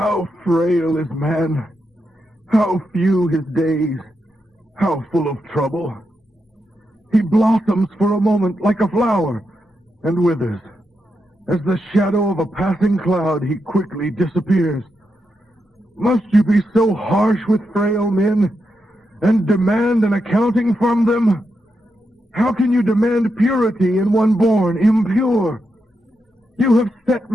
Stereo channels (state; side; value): normal; both; correlation 0.85